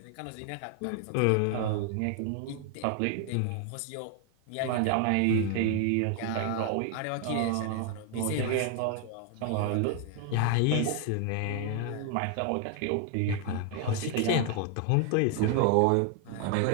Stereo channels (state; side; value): different; both; correlation 0.00